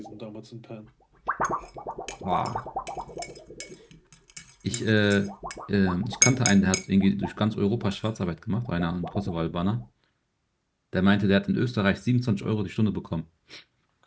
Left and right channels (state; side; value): identical; both; correlation 1.00